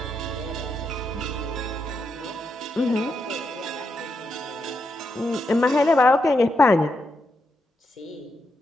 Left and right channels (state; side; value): normal; both; correlation 0.83